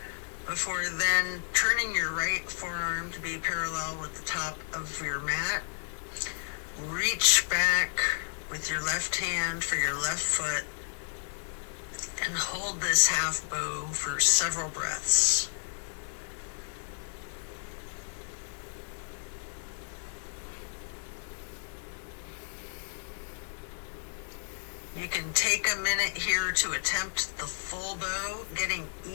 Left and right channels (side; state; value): right; silent; digital silence